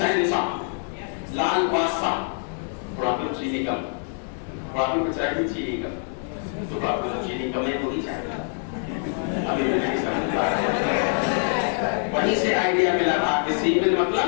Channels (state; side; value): silent; right; 57 dB below the other